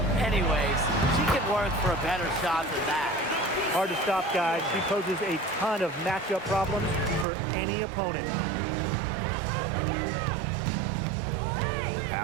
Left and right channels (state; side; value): drops out; left; at 7.2 s